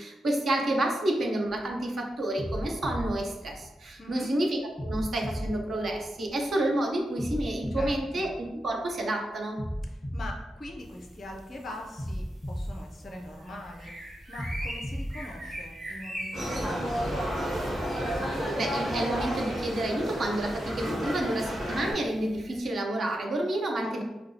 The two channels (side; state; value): both; normal; correlation 0.87